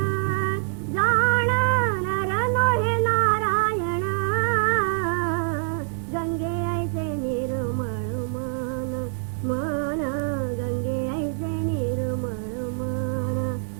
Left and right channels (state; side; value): silent; left; digital silence